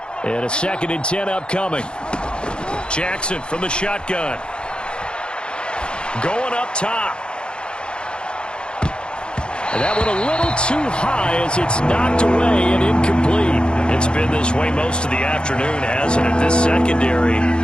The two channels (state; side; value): late; right; 0.052 ms